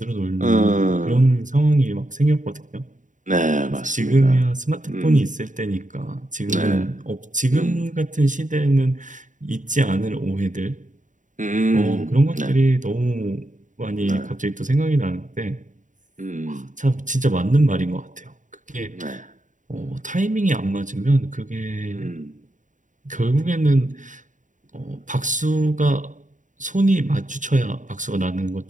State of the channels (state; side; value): late; left; 0.37 ms